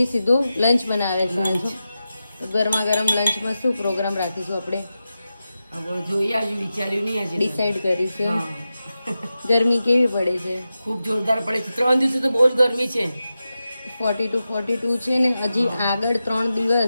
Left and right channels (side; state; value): both; inverted; correlation -0.92